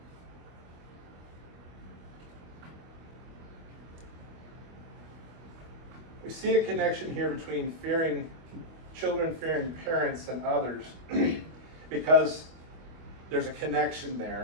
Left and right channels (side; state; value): left; late; 25 ms